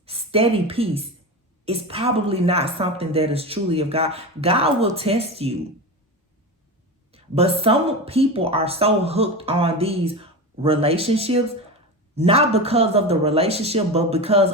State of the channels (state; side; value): normal; both; correlation 0.23